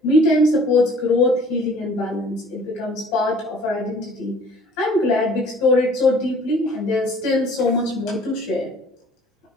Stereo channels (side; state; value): both; normal; correlation 0.52